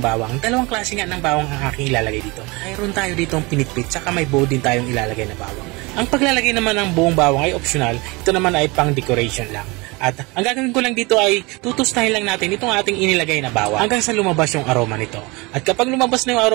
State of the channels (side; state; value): left; quieter; 25.6 dB